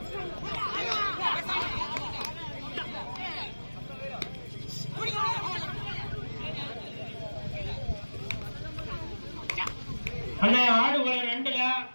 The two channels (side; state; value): both; inverted; correlation -1.00